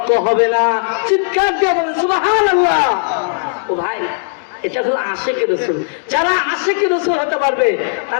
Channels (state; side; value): silent; right; digital silence